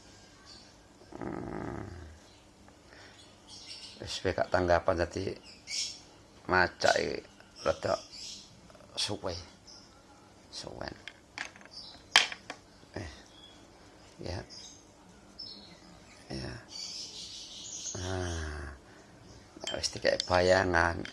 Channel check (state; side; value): identical; both; correlation 1.00